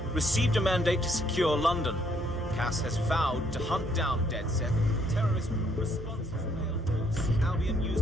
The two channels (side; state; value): both; normal; correlation 0.69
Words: received a mandate to secure London. Cass has vowed to hunt down DedSec. Terrorist responses failed. Albion